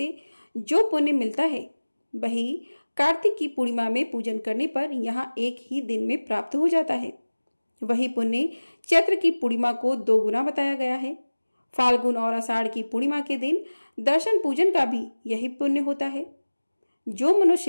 जो पुण्य मिलता है, वही कार्तिक की पूर्णिमा में पूजन करने पर यहाँ एक ही दिन में प्राप्त हो जाता है। वही पुण्य चैत्र की पूर्णिमा को 2 गुना बताया गया है। फाल्गुन और आषाढ़ की पूर्णिमा के दिन दर्शन पूजन का भी यही पुण्य होता है। जो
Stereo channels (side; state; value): both; inverted; correlation -1.00